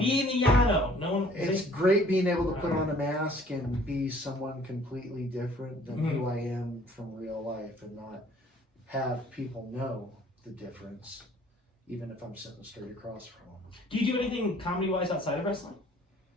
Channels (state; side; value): normal; both; correlation 0.56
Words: the Yano. No one. It's great being able to put on a mask and be someone completely different than who I am from real life, and not have people know the difference, even if I'm sitting straight across from them. Do you do anything comedy wise outside of wrestling?